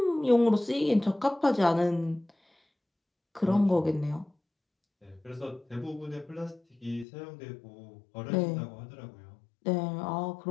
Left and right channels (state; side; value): drops out; right; at 7.1 s